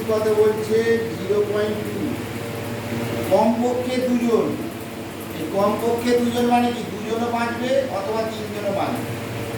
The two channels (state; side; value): identical; both; correlation 1.00